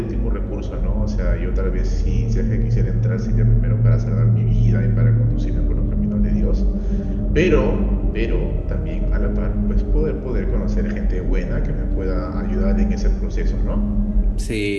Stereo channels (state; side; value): identical; both; correlation 1.00